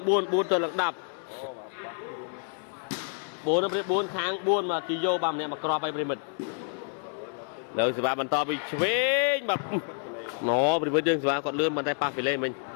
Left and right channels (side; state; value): right; silent; 58 dB below the other